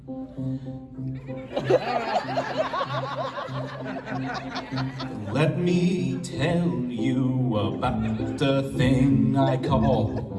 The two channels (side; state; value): both; identical; correlation 1.00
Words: Let me tell you about the thing I